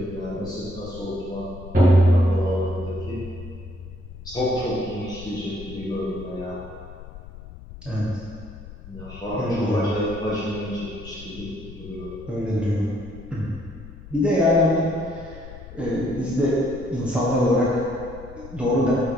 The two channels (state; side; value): noise; left; rumble, 15 dB below the sound